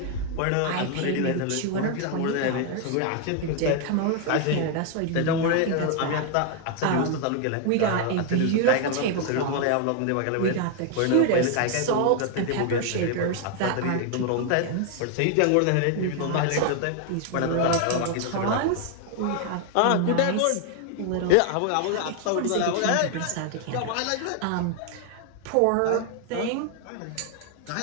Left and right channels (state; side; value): different; both; correlation 0.00